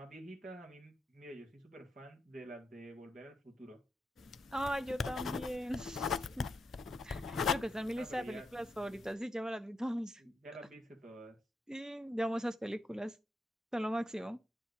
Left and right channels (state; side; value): normal; both; correlation 0.83